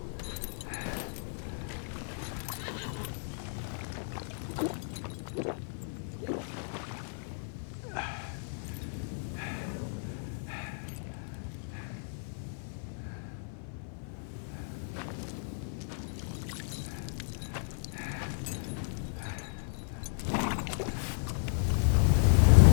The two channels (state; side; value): silent; right; 55 dB below the other